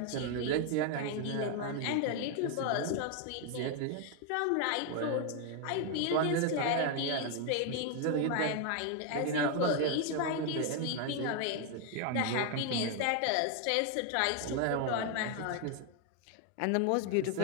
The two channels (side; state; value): both; different; correlation 0.01